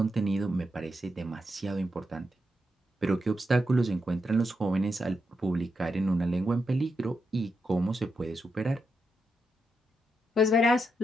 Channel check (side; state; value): both; normal; correlation 0.84